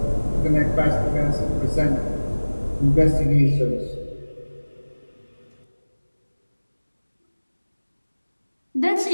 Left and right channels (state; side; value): inverted; both; correlation -1.00